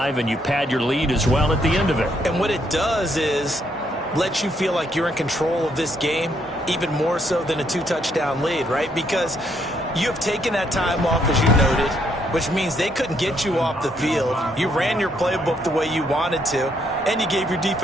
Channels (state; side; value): normal; both; correlation 0.73